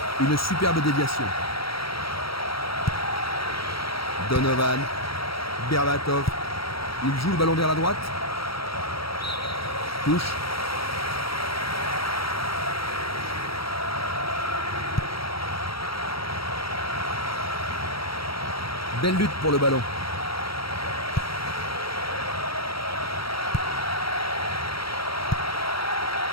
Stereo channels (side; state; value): right; late; 0.75 ms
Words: Une superbe déviation. Donovan. Berbatov. Il joue le ballon vers la droite. Touche. Belle lutte pour le ballon.